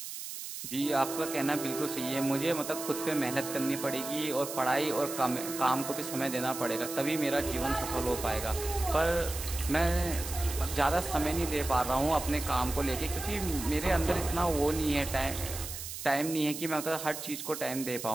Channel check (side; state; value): right; noise; hiss, 8 dB below the sound